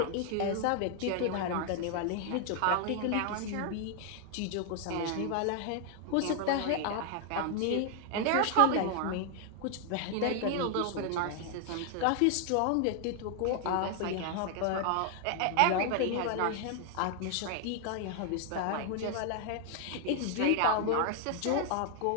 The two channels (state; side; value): different; both; correlation 0.00